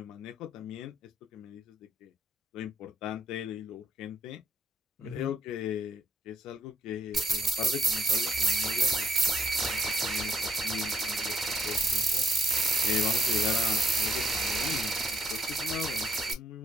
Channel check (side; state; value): both; normal; correlation 0.73